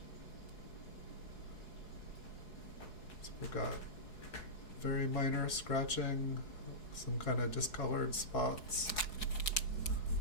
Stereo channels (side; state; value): right; late; 4.7 ms